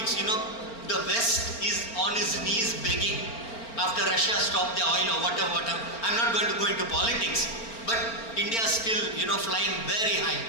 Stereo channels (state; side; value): late; right; 4.4 ms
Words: the West is on its knees begging after Russia stopped the oil or whatever. I'm not going to go into politics, but India is still, flying very high.